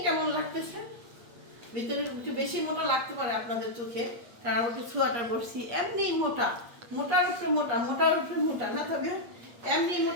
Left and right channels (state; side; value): late; left; 8.4 ms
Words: কেমন লাগতেছে? ভিতরে একটু বেশি মোটা লাগতে পারে আপনাদের চোখে, কারণ আমি একটু সোয়াটার পরছি। এমনি মোটা, মোটার উপরে মোটা, মোটার উপরে মোটা না তবে এমনি